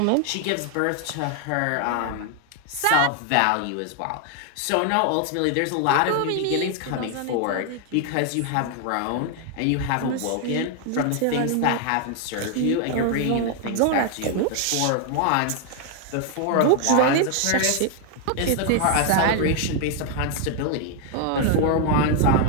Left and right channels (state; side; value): different; both; correlation 0.00